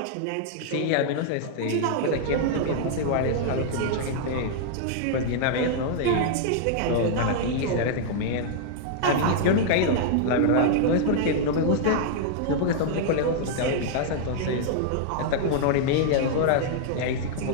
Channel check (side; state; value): both; different; correlation -0.01